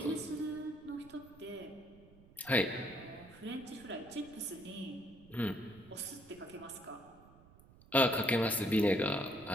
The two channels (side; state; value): right; noise; rumble, 23 dB below the sound